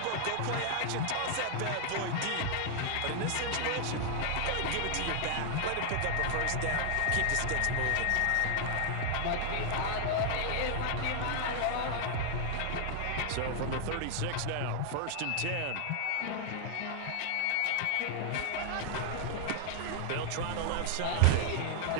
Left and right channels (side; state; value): both; different; correlation 0.00